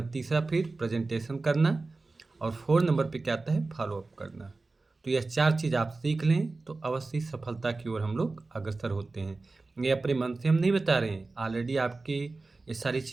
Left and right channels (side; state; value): left; quieter; 3.5 dB